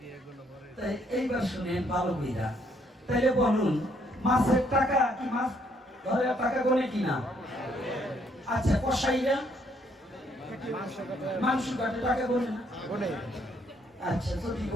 তাই এইবার শুনেন ভালো কইরা। তাইলে বলুন, মাছের টাকা কি মাছ ধরে টাকা গোনে কিনা? আচ্ছা, কসাইরা মাংস কাটে টাকা গোনে না? আচ্ছা, যদি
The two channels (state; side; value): normal; both; correlation 0.69